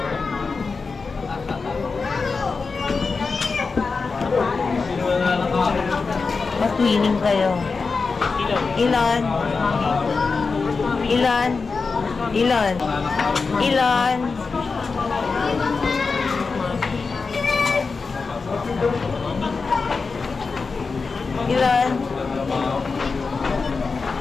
Matwining kayo. Ilan? Ilan? Ilan? Ilan? Ilan?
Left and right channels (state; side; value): quieter; right; 4.5 dB